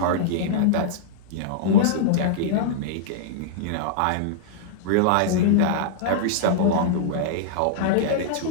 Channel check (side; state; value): both; different; correlation -0.02